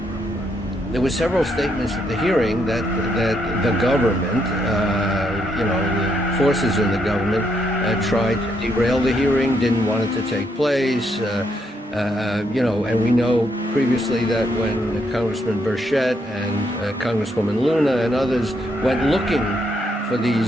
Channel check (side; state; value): both; normal; correlation 0.76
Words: There were several statements at the hearing that the government, the forces in the government, tried to derail the hearing, didn't want it to take place. And we know previously that when Congressman Burchett and Congresswoman Luna and others went looking for